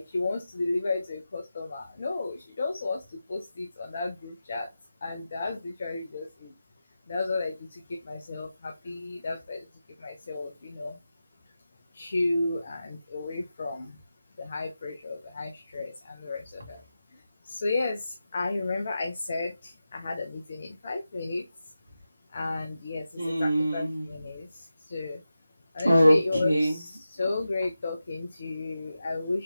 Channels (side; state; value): both; inverted; correlation -0.92